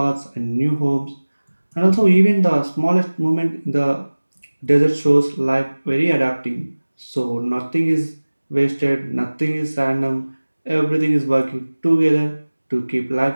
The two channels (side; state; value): both; inverted; correlation -1.00